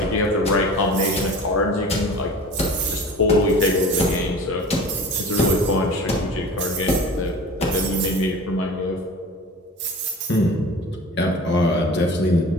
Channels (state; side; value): normal; both; correlation 0.39